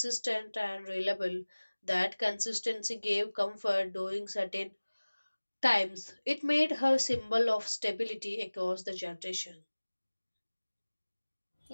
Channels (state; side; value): inverted; both; correlation -1.00